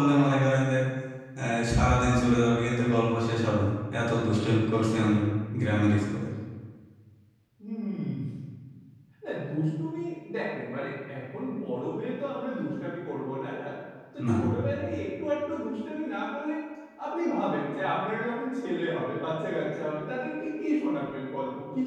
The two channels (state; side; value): identical; both; correlation 1.00